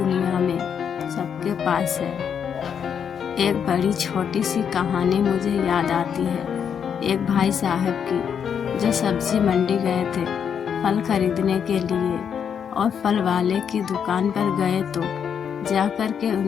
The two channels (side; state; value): right; quieter; 7.7 dB